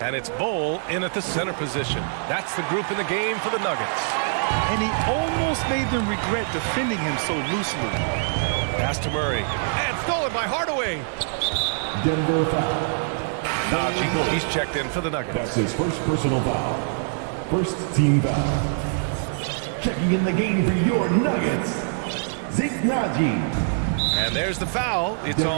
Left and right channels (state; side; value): silent; left; digital silence